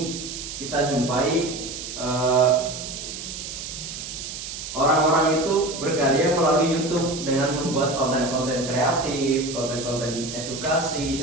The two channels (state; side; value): noise; right; hiss, 8 dB below the sound